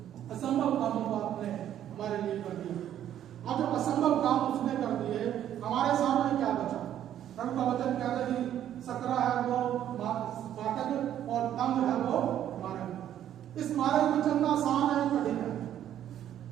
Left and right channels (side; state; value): left; quieter; 10.9 dB